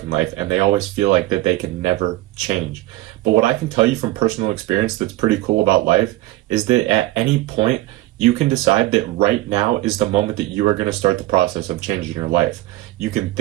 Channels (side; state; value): left; quieter; 17.2 dB